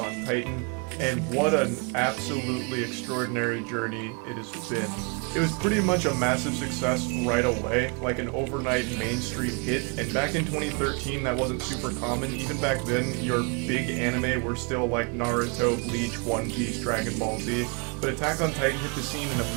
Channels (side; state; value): left; quieter; 34.6 dB